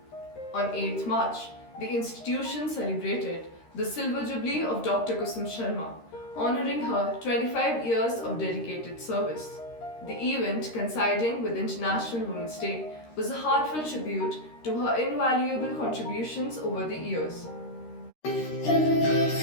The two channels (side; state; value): right; late; 13 ms